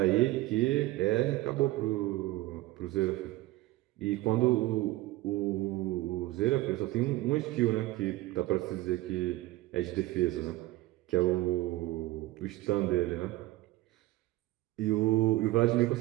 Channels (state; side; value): quieter; left; 17.9 dB